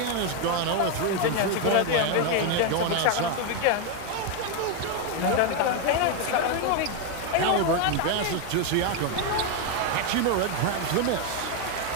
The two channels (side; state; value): both; different; correlation 0.01